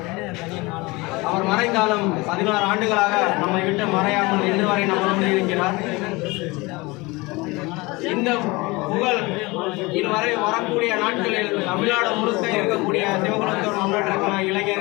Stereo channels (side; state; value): right; quieter; 23.8 dB